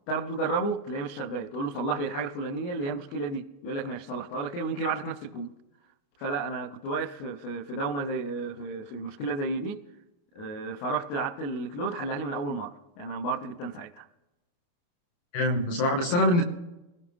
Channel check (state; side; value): late; right; 29 ms